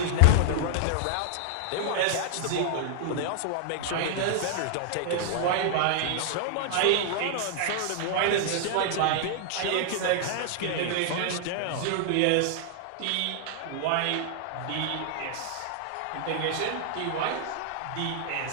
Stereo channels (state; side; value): different; both; correlation -0.01